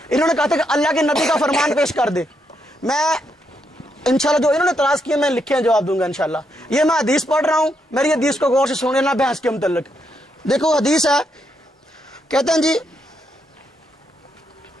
انہوں نے کہا تھا کہ اللہ کے نبی کا فرمان پیش کر دے. میں انشاءاللہ جو انہوں نے اعتراض کیے میں لکھے ہیں جواب دوں گا انشاءاللہ. یہ میں حدیث پڑھ رہا ہوں, میری حدیث کو غور سے سن لینا بحث کے متعلق. دیکھو حدیث ہے, کہتے ہیں جی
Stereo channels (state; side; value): normal; both; correlation 0.79